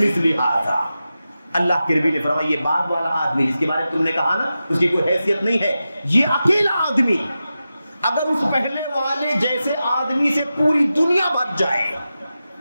ھذا. اللہ کے نبی نے فرمایا یہ بعد والا آدمی جس کے بارے میں تم نے کہا نا اس کی کوئی حیثیت نہیں ہے، یہ اکیلا آدمی اگر اس پہلے والے جیسے آدمی سے پوری دنیا بھر جائے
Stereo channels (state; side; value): inverted; both; correlation -0.92